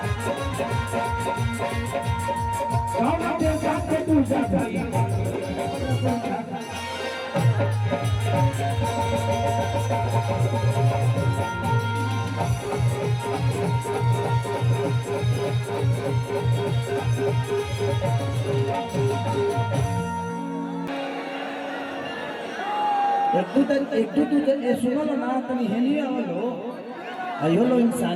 गाँव देवता के दूजा भाई एक दू सुनो ना तनी हेलिए आवलो आयो लो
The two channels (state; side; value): identical; both; correlation 1.00